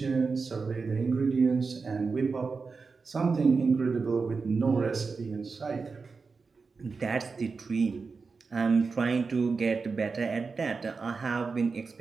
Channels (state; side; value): quieter; left; 4.6 dB